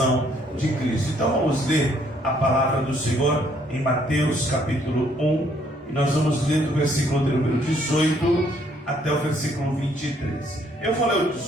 de Cristo. Então vamos ler a palavra do Senhor em Mateus capítulo 1. E nós vamos ler do versículo de número 18 até o versículo 23. Eu vou ler o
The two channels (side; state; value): both; normal; correlation 0.66